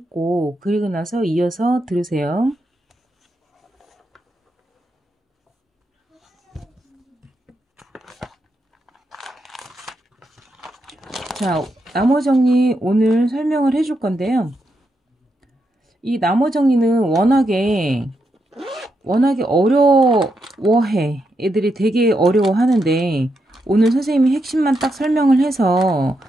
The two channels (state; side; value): normal; both; correlation 0.83